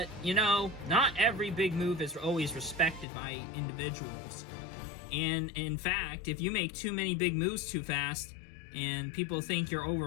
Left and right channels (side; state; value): right; drops out; at 3.1 s